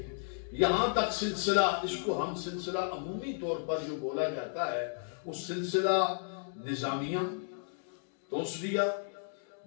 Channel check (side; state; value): right; silent; digital silence